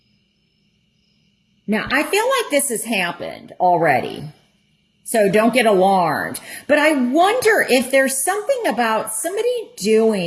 now I feel like this has happened already, so don't get alarmed. But I wonder if there's something about somebody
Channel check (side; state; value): both; identical; correlation 1.00